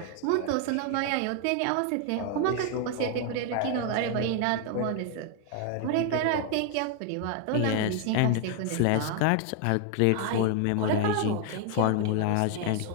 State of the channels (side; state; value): both; different; correlation 0.00